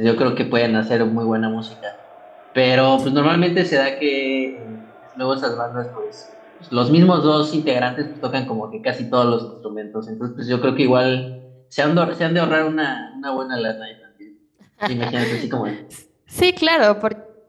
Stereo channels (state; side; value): identical; both; correlation 1.00